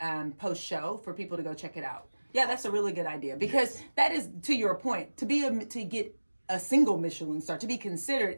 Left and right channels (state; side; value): inverted; both; correlation -1.00